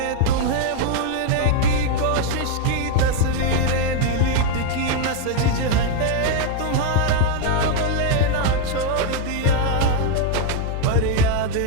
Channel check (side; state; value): both; different; correlation 0.00